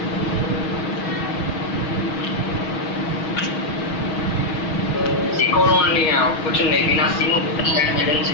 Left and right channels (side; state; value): right; late; 6.3 ms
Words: कुछ नहीं बिना सीमो